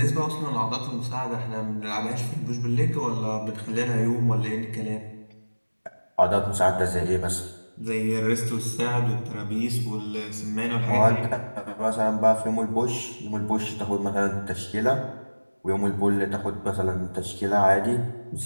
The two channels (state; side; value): inverted; both; correlation -1.00